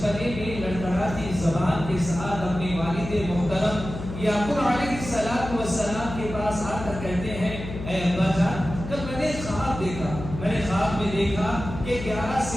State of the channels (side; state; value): left; noise; hum, 9 dB below the sound